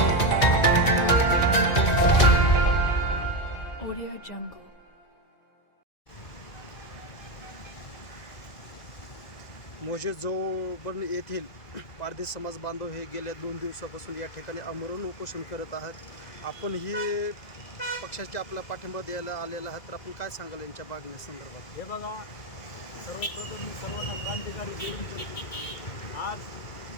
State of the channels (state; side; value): late; right; 2.0 ms